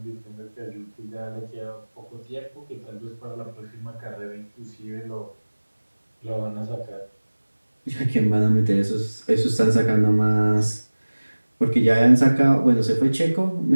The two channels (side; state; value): both; inverted; correlation -1.00